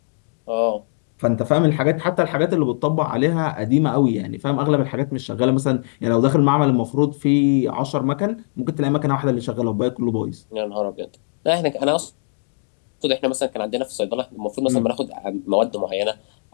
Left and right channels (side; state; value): right; silent; digital silence